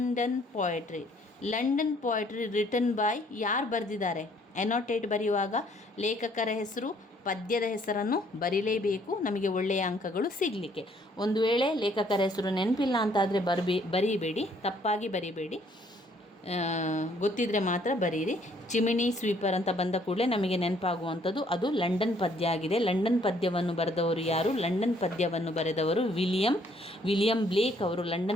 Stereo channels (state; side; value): normal; both; correlation 0.64